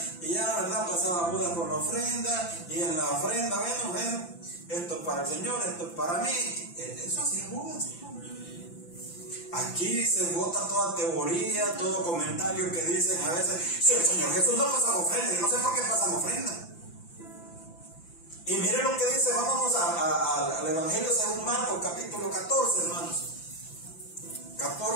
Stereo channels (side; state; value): right; late; 5.9 ms